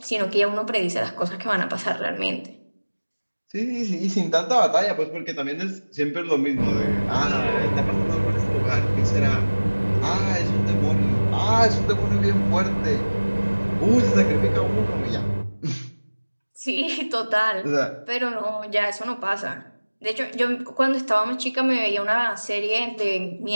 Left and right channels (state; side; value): inverted; both; correlation -1.00